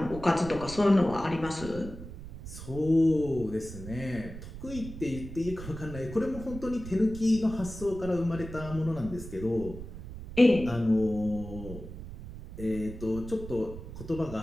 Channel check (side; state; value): right; noise; rumble, 11 dB below the sound